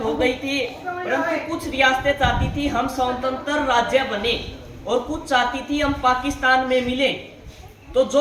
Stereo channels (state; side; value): identical; both; correlation 1.00